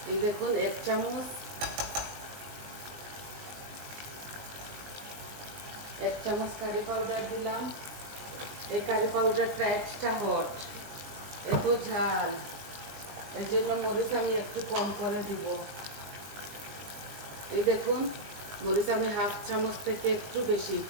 এই দেখুন 1 চামচ, 1 চামচ কারি পাউডার দিলাম। এই কারি পাউডারটা এক্সট্রা হট, এত ঝাল, এই জন্য মরিচ আমি একটু কম করে দিব। এই দেখুন মরিচ আমি 1/2 চামচ থেকে একটু বেশি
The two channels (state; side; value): late; left; 20 ms